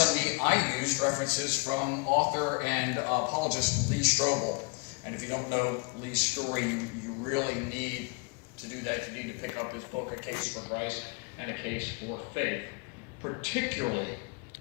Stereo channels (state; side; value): quieter; right; 31.6 dB